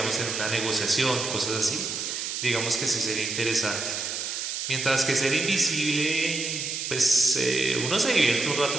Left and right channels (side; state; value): right; noise; hiss, 4 dB below the sound